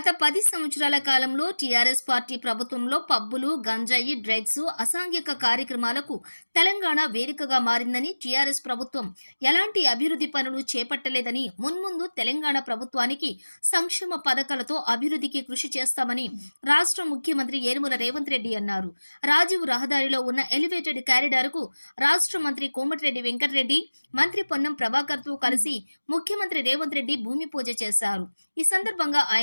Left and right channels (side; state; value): both; inverted; correlation -1.00